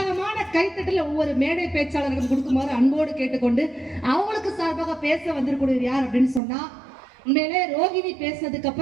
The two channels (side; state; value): left; drops out; at 6.4 s